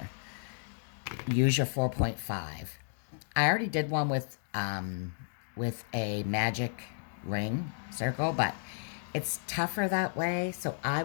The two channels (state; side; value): silent; right; digital silence